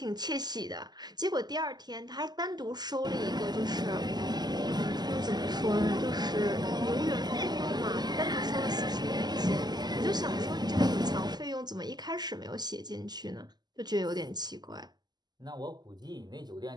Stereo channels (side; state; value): left; late; 0.20 ms